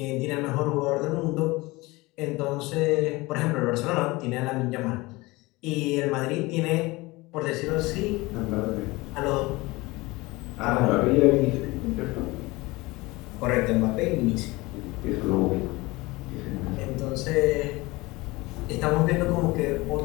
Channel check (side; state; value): right; quieter; 22.1 dB